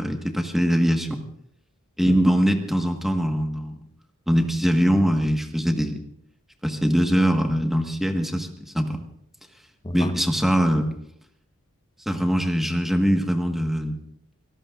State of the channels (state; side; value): normal; both; correlation 0.96